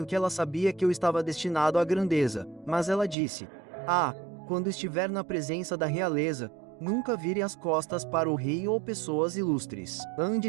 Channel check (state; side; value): drops out; left; at 3.2 s